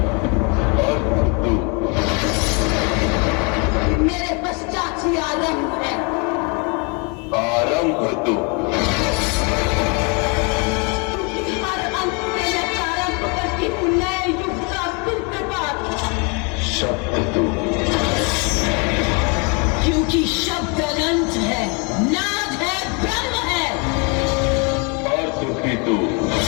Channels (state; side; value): quieter; right; 33.2 dB